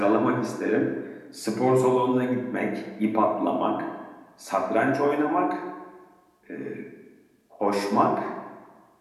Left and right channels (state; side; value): identical; both; correlation 1.00